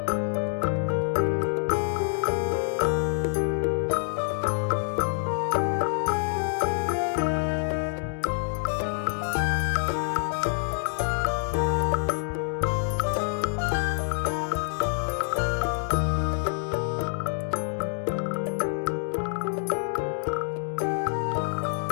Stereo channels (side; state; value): right; silent; digital silence